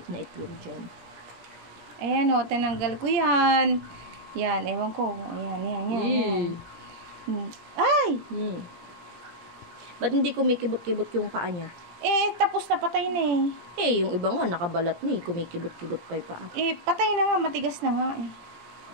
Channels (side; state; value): left; late; 18 ms